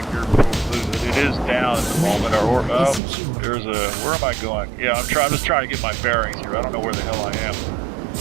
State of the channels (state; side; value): drops out; left; at 3.0 s